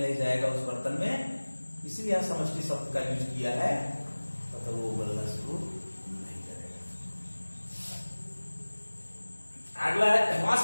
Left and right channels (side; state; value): both; inverted; correlation -1.00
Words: नहीं जाएगा उस बर्तन में, इसलिए यहां समष्टि शब्द का यूज किया है, तब तक वो उबलना शुरू नहीं करेगा। अगला है